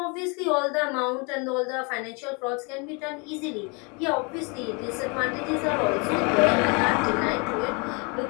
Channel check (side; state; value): right; quieter; 32.3 dB